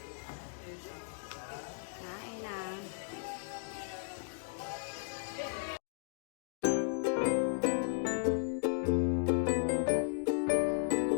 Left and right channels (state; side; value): silent; right; digital silence